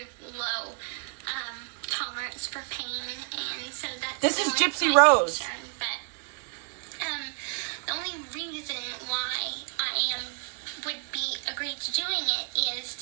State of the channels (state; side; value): quieter; left; 38.3 dB